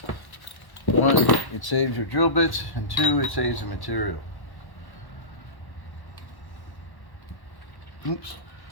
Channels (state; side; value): late; right; 1.1 ms